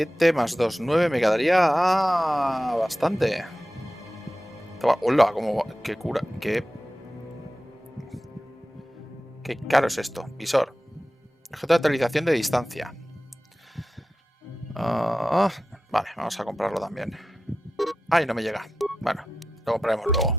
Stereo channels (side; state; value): both; normal; correlation 0.93